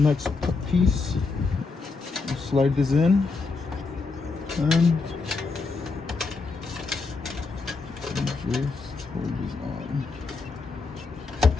next piece, we'll slide this in and just hold this on.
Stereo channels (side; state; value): right; quieter; 4.2 dB